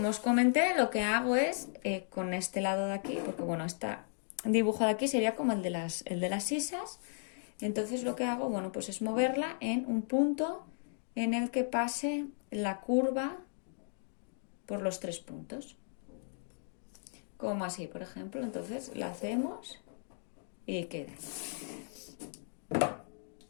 os comenté, lo que hago es con este lado de aquí, porque bueno, este dibujo de aquí sería como el de las sisas. Entonces lo que hago, bueno, pues es moverla en un punto en el que pase la curva por los 3 puntos. Como así, por ejemplo. Entonces la hacemos y queda.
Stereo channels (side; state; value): right; silent; digital silence